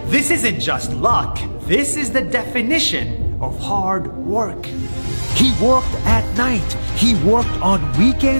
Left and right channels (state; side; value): inverted; both; correlation -1.00